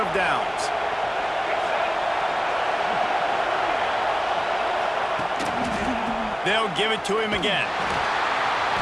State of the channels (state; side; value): identical; both; correlation 1.00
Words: of downs. They'll give it to him again.